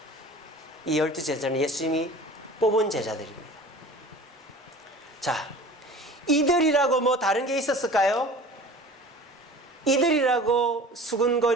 이 12제자는 예수님이 뽑은 제자들입니다. 자, 이들이라고 뭐 다른 게 있었을까요? 이들이라고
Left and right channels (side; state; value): both; normal; correlation 0.41